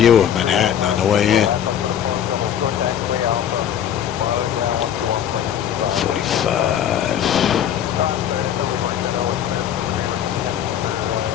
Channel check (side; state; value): right; quieter; 9.6 dB